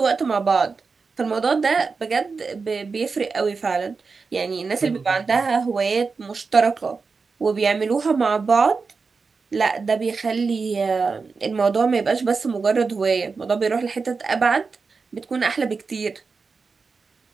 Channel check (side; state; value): left; quieter; 4.7 dB